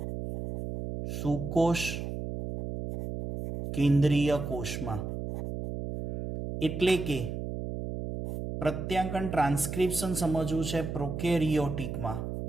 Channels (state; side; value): noise; right; hum, 5 dB below the sound